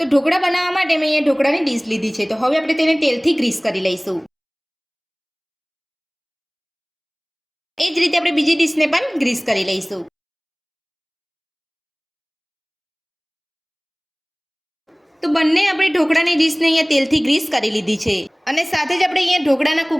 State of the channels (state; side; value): identical; both; correlation 1.00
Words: ઢોકળા બનાવવા માટે મેં અહીંયા ઢોકળાની ડીશ લીધી છે। તો હવે આપણે તેને તેલથી ગ્રીસ કરી લઈશું। એ જ રીતે આપણે બીજી ડીશને પણ ગ્રીસ કરી લઈશું। તો બંને આપણે ઢોકળાની ડીશને અહીંયા તેલથી ગ્રીસ કરી લીધી છે અને સાથે જ આપણે અહીંયા ઢોકળાના